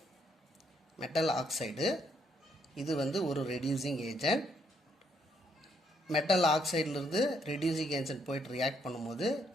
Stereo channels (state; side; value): normal; both; correlation 0.73